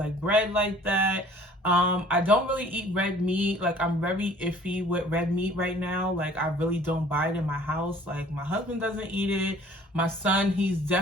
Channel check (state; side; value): normal; both; correlation 0.52